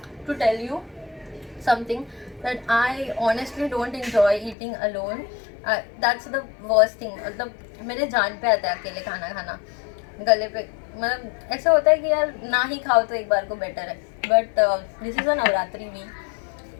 to tell you something, that I honestly don't enjoy eating alone. That's the worst thing. मतलब मेरे जान पे आता है अकेले खाना खाना, गले पे मतलब ऐसा होता है कि यार ना ही खाओ तो एक बार को बेटर है. But this is a Navratri week,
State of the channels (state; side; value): drops out; right; at 4.5 s